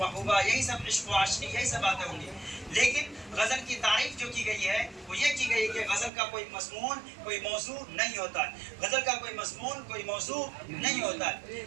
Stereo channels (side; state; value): left; drops out; at 6.1 s